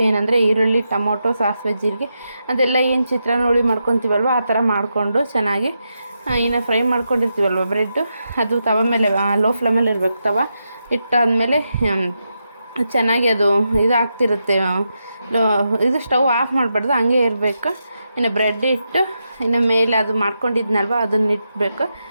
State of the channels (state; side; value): inverted; both; correlation -0.86